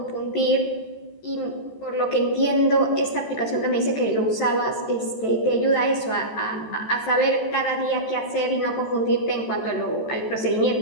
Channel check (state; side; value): late; right; 14 ms